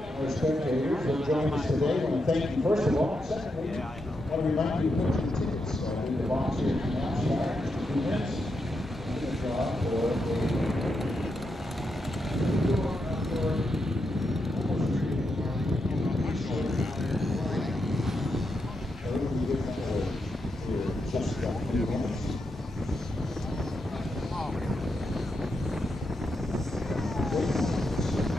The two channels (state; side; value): normal; both; correlation 0.84